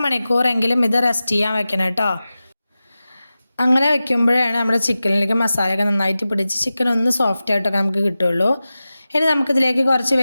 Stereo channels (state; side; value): inverted; both; correlation -0.95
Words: ഇത് റെസ്റ്റ് ചെയ്യാൻ വെക്കണം കേട്ടോ. അങ്ങനെ വെക്കുമ്പോഴാണ് നമ്മുടെ ചിക്കനിലേക്ക് മസാലയൊക്കെ നന്നായിട്ട് പിടിച്ച് ചിക്കൻ ഒന്ന് സോഫ്റ്റ് ആയിട്ടൊക്കെ നമുക്ക് കിട്ടുള്ളൂ. ഇനി നമുക്കിതിലേക്ക് കുറച്ച്